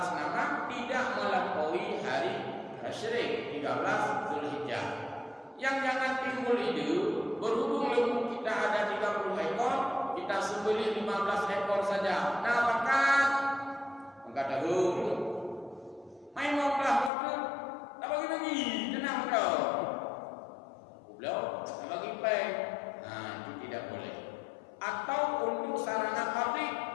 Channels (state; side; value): drops out; right; at 17.1 s